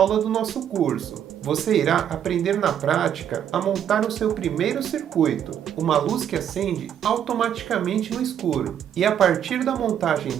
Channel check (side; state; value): left; quieter; 9.5 dB